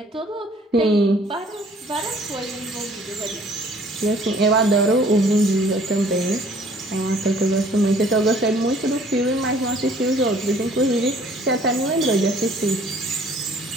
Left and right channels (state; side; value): normal; both; correlation 0.57